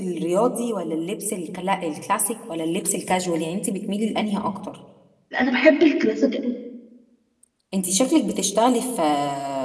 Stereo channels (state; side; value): identical; both; correlation 1.00